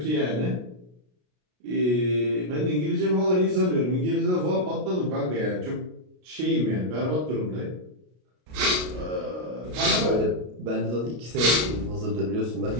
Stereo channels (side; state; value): left; late; 33 ms